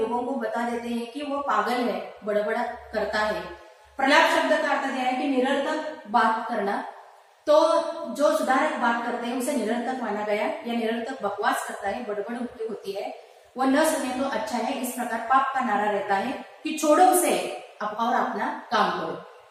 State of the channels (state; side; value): identical; both; correlation 1.00